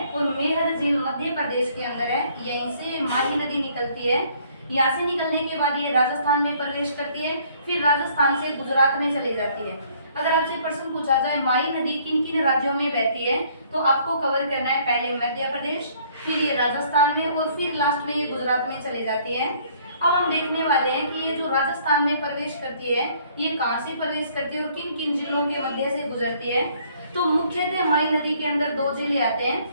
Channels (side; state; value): both; inverted; correlation -0.61